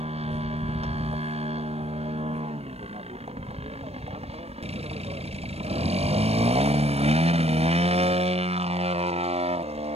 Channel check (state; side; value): late; left; 0.30 ms